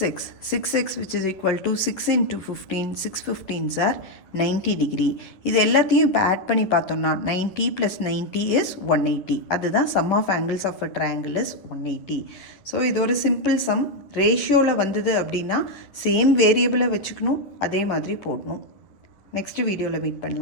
6x which is equal to 6 into 15, 6 15s are 90 degree. இது எல்லாத்தையும் இப்போ add பண்ணி பார்த்தோம்னா 90 + 90 is 180. அதுதான் sum of angles of a triangle is 180. So இது ஒரு சிம்பிள் சம். ரேஷியோவில் வந்தது அப்படின்னா சேம் வேரியபிளை வச்சுக்கணும், அதே மாதிரி போடணும். நெக்ஸ்ட் வீடியோவில் மீட்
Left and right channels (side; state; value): right; late; 10 ms